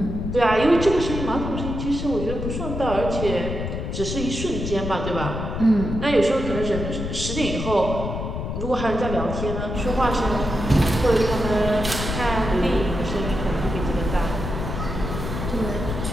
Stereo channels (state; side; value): noise; left; rumble, 4 dB below the sound